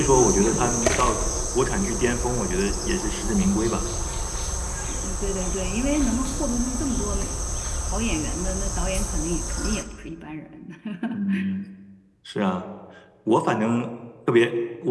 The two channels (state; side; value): identical; both; correlation 1.00